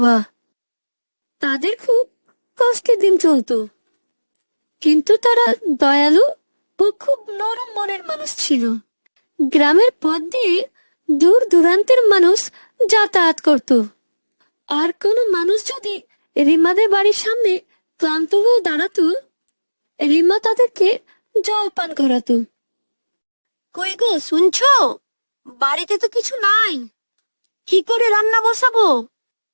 তাদের খুব কষ্টের দিন চলতো, কিন্তু তারা দয়ালু ও খুব নরম মনের মানুষ ছিল। গ্রামের পথ দিয়ে দূর দূরান্তের মানুষ যাতায়াত করত। আর কোনো মানুষ যদি রিমাদের বাড়ির সামনে ক্লান্ত হয়ে দাঁড়াতো, রিমা তাদেরকে জল পান করাতো। কই গো, শুনছো? বাড়িতে তো কিছু নাই, কি করে রান্না বসাবো?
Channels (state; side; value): inverted; both; correlation -1.00